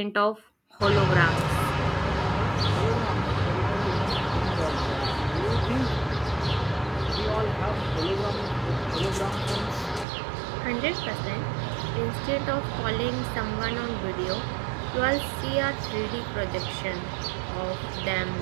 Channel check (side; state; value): left; drops out; at 10.1 s